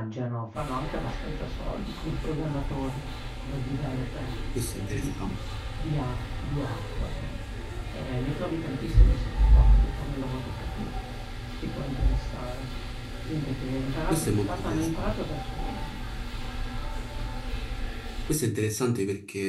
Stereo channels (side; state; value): both; identical; correlation 1.00